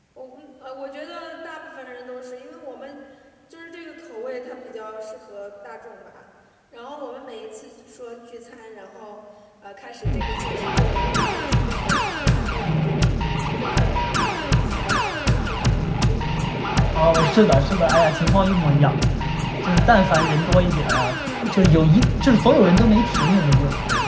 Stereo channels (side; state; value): both; identical; correlation 1.00